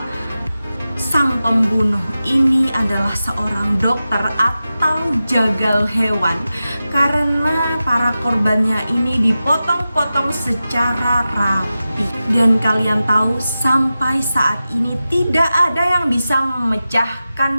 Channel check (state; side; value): inverted; both; correlation -0.93